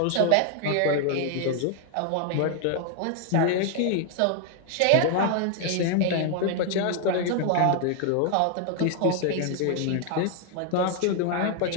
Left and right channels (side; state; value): both; different; correlation 0.00